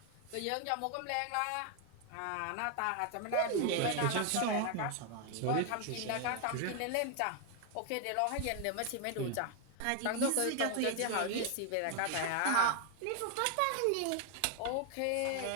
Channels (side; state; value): both; different; correlation 0.01